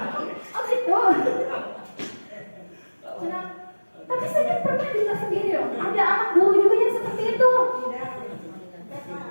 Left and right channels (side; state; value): both; inverted; correlation -1.00